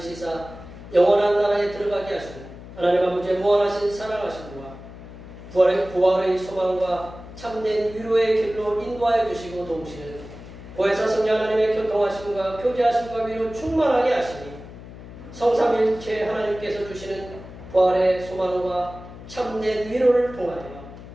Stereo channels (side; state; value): left; noise; hum, 15 dB below the sound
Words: 영원한 나라에 들어가게 하시는 하나님 아버지의 무한하신 사랑하심과 부활의 소망과 참된 위로의 길로 인도하여 주시고 도우시는 보혜사 성령 하나님의 교통하심과 교제하심과 위로 충만하게 하시니 성삼일체 하나님께서 주시는 부활의 소망과 참된 위로를 통하여